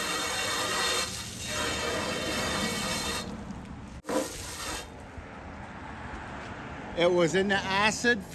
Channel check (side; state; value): both; identical; correlation 1.00